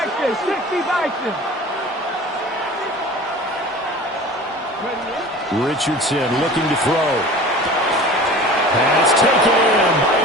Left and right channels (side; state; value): both; normal; correlation 0.40